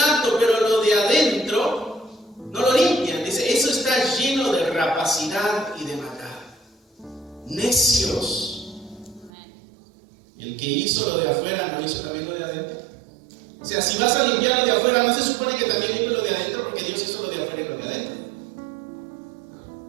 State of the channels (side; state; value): left; drops out; at 9.3 s